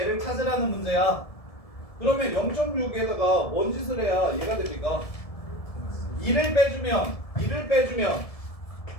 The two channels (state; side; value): late; right; 1.7 ms